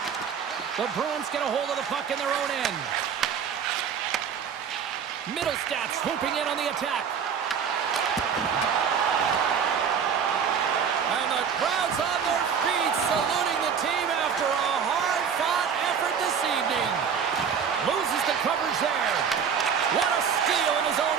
The Bruins get a hold of the puck in their own end. Middlestat swooping in on the attack. And the crowd's on their feet saluting the team after a hard-fought effort this evening. Loses the coverage there. What a steal in his own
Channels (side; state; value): left; quieter; 7.2 dB